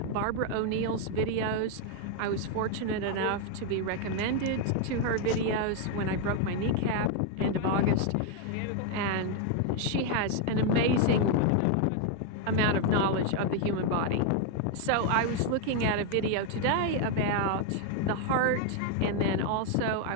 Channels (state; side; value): different; both; correlation 0.01